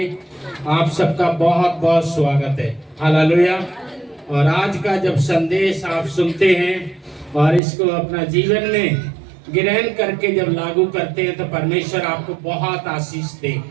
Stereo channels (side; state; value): left; drops out; at 7.6 s